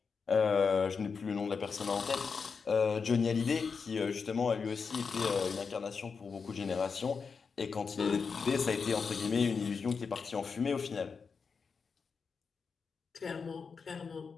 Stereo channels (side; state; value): right; quieter; 5.4 dB